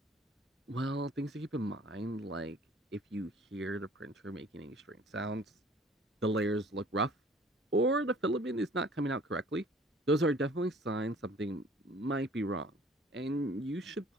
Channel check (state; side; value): normal; both; correlation 0.52